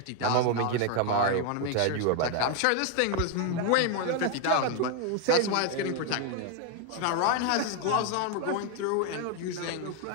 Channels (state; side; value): different; both; correlation 0.01